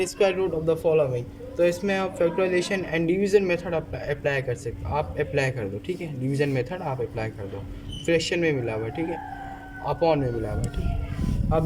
square root of the following, तो इसमें आप factorisation and division method apply कर सकते, आप अप्लाई कर दो। ठीक है, डिवीजन मेथड आप अप्लाई कर दो। फ्रैक्शन में मिला हुआ, ठीक है, अपॉन में मिला हुआ, ठीक है।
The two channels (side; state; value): both; identical; correlation 1.00